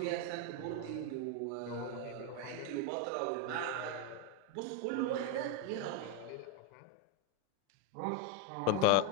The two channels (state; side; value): different; both; correlation 0.02